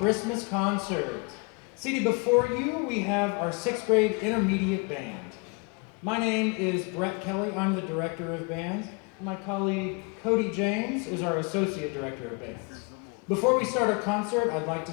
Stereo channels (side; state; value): right; quieter; 31.9 dB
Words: Concert. Seated before you, we have our 6th grade intermediate band. My name is Brett Kelley. I'm the director of bands. My colleague Cody James is our associate director of bands. Before we start our concert, I'd like to